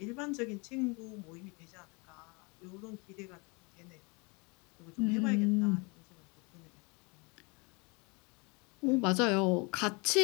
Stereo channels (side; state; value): right; quieter; 29.9 dB